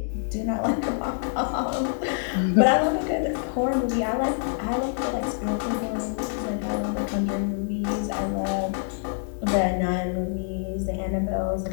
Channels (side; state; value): right; silent; 61 dB below the other